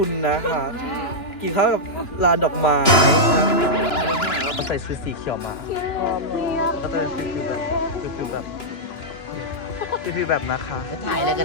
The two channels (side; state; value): right; late; 2.9 ms